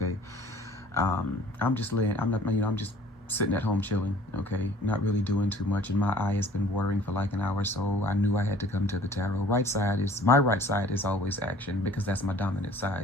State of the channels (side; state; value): both; normal; correlation 0.52